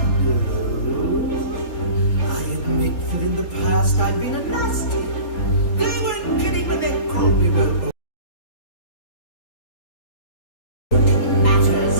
I admit that in the past I've been a nasty. They weren't kidding when they called me well. Matters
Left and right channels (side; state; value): right; late; 4.0 ms